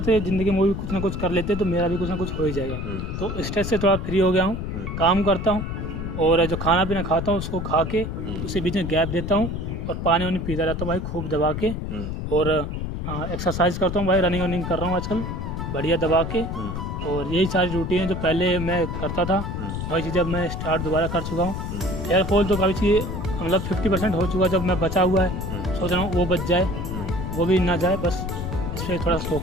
ज़िंदगी में भी कुछ ना कुछ कर लेते हैं, तो मेरा भी कुछ ना कुछ हो ही जाएगा। तो स्ट्रेस से थोड़ा फ्री हो गया हूँ, काम करता हूँ, और जो खाना पीना खाता हूँ उसको खा के उसी बीच में गैप देता हूँ, और पानी वानी पीता रहता हूँ भाई खूब दबा के, और एक्सरसाइज करता हूँ भाई, रनिंग कर रहा हूँ आजकल बढ़िया दबा के। और यही सारी रूटीन है जो पहले मैं करता था, वही चीज़ अब मैं स्टार्ट दोबारा कर चुका हूँ। हेयर फॉल तो काफ़ी चीज़ मतलब 50% हो चुका है, जब मैं बचा हुआ है सोच रहा हूँ वो बच जाए, वो भी ना जाए, बस इस पर थोड़ा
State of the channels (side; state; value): left; noise; rumble, 4 dB below the sound